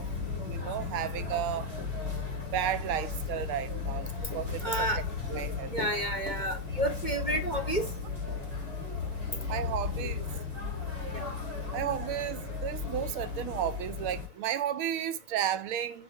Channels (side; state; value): right; late; 2.2 ms